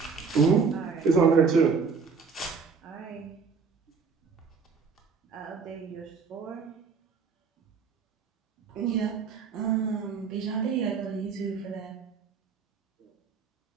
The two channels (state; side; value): quieter; left; 5.4 dB